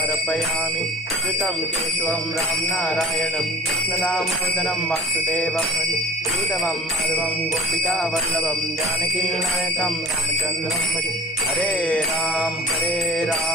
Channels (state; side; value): normal; both; correlation 0.43